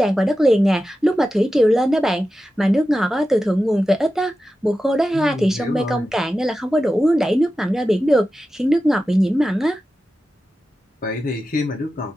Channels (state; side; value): normal; both; correlation 0.92